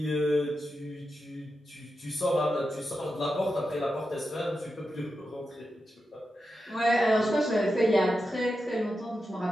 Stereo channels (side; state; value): both; normal; correlation 0.89